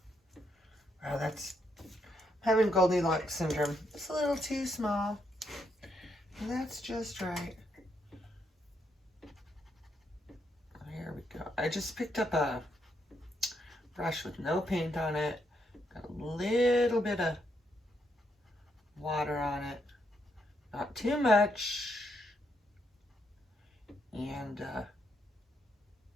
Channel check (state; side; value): normal; both; correlation 0.77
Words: Wow, that's having Goldilocks syndrome. It's a little too small. And that's just right. There we go. I just picked up a brush with no paint on it. Got a little bit of water on it. Not too much. And